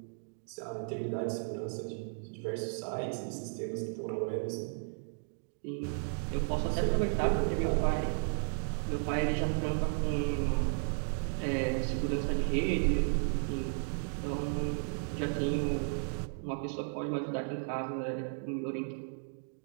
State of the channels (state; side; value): silent; left; digital silence